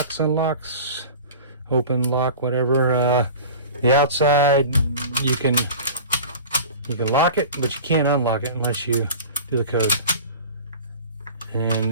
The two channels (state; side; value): inverted; both; correlation -0.38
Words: unlocks, open, lock, whatever. The outside, you can lock it, but you can't unlock it unless you do the code. And